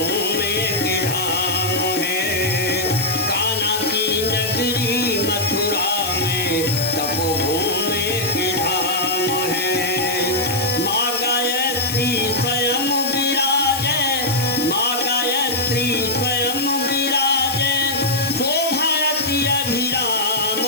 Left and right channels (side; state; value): left; noise; hiss, 5 dB below the sound